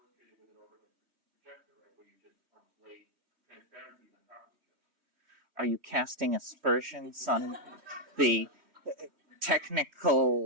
with an overhead projector, right, where you just lay transparencies on top of each other. Are you casting aspersions on the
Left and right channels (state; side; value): late; left; 3.1 ms